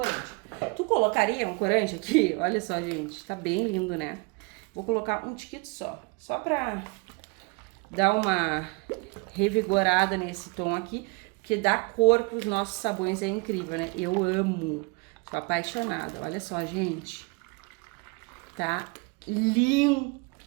Tu colocaria um corante aqui? Olha só, gente, tá bem lindo, né? Vou colocar um tiquito só pra dar uma revigorada nesse tom aqui, porque dá cor pros nossos sabões, é incrível, né? Eu amo, sou apaixonada. Olha só, gente, tá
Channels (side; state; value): left; quieter; 30.1 dB